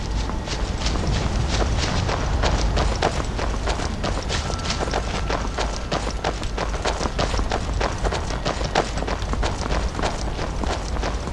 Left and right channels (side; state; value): both; identical; correlation 1.00